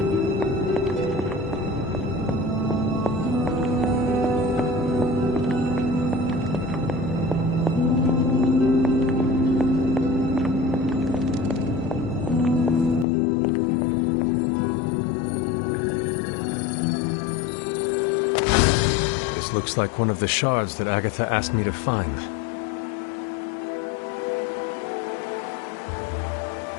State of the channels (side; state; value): right; drops out; at 13.1 s